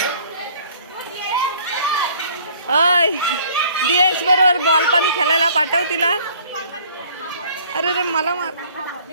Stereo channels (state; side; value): inverted; both; correlation -0.54